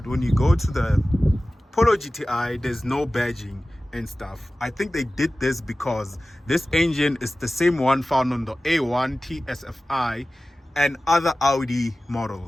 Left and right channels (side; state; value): both; normal; correlation 0.96